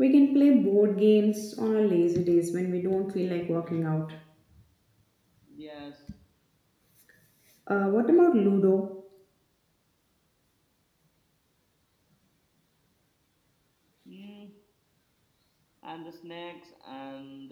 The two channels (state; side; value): identical; both; correlation 1.00